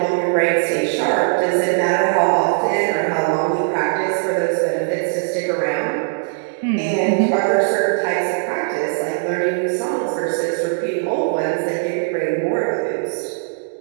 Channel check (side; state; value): left; silent; digital silence